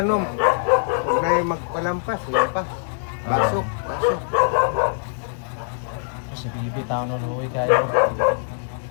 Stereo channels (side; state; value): right; silent; digital silence